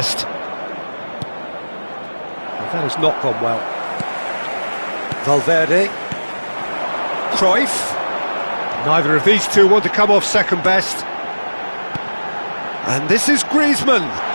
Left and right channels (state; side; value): inverted; both; correlation -1.00